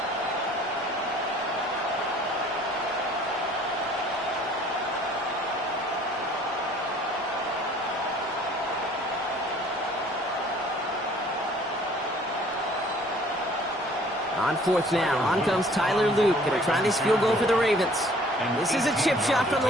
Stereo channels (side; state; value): both; normal; correlation 0.55